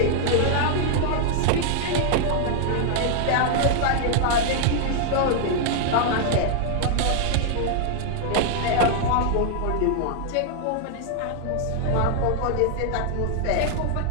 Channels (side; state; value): both; different; correlation -0.01